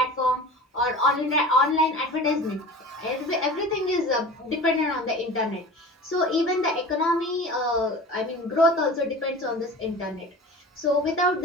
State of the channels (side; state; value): both; normal; correlation 0.37